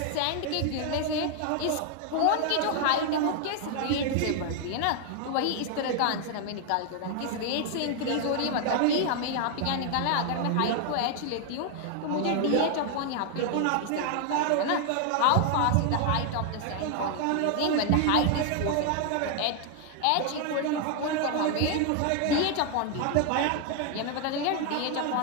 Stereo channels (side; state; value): both; different; correlation 0.00